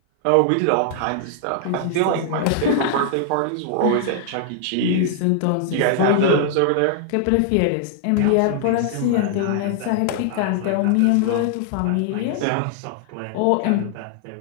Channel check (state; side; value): different; both; correlation 0.00